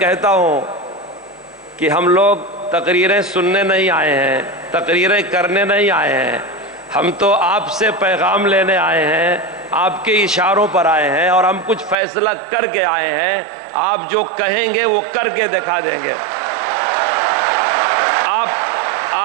ہوں کہ ہم لوگ تقریریں سننے نہیں آئے ہیں، تقریریں کرنے نہیں آئے ہیں، ہم تو آپ سے پیغام لینے آئے ہیں، آپ کے اشاروں پر آئے ہیں، اور ہم کچھ فیصلہ کر کے آئے ہیں۔ آپ جو کہیں گے وہ کر کے دکھا دیں گے۔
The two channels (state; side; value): drops out; left; at 12.0 s